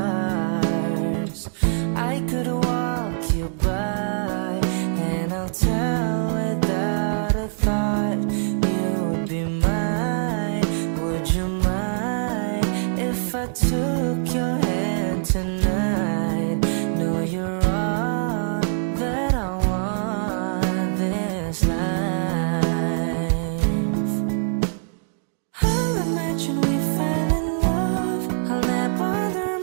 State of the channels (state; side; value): silent; left; digital silence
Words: I could walk you by, and I'll tell without a thought you would be mine. Would you mind if I took your hand tonight? No, you're all that I want this life. I'll imagine we fell in love. I'll nap under